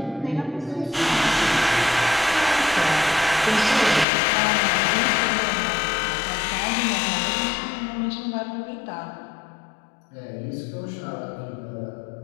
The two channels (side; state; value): right; drops out; at 4.0 s